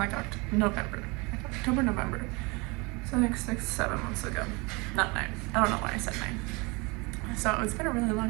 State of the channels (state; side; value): quieter; left; 27.4 dB